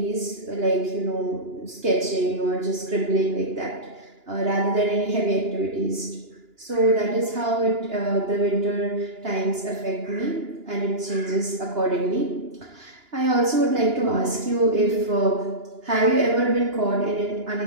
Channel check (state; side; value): late; left; 2.9 ms